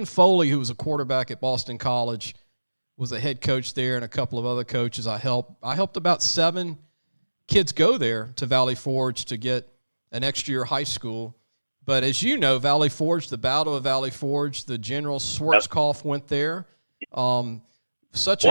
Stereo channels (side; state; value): both; inverted; correlation -1.00